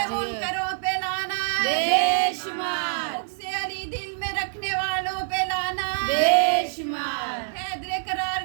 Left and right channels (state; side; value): silent; left; 61 dB below the other